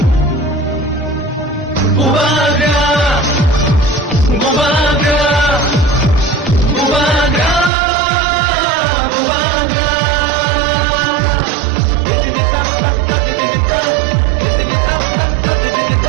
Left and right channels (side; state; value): left; drops out; at 7.7 s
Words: Bubaga Bubaga Bubaga Bubaga Didinita tata didinita Didinita tata